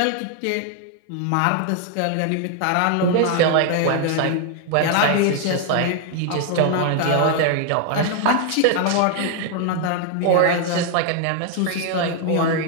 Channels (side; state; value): both; different; correlation 0.00